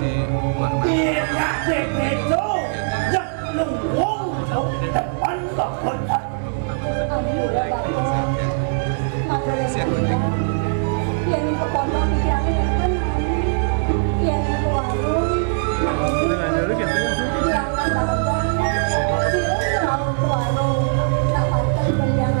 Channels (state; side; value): silent; left; 65 dB below the other